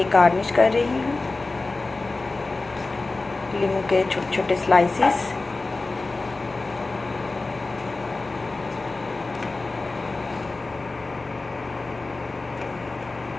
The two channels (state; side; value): quieter; right; 3.4 dB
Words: गार्निश कर रही हूँ लीमू के छोटे छोटे स्लाइसेस।